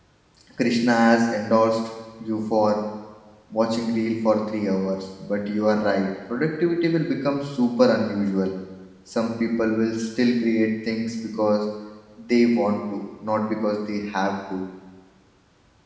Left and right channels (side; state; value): both; identical; correlation 1.00